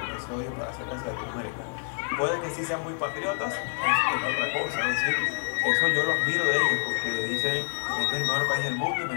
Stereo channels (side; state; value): right; silent; 59 dB below the other